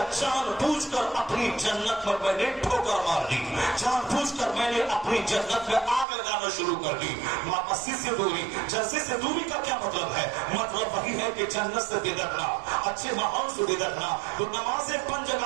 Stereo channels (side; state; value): left; drops out; at 6.1 s